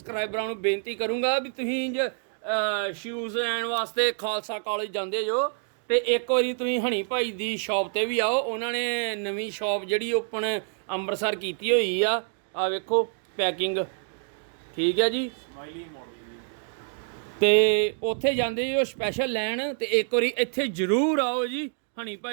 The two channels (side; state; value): left; silent; 60 dB below the other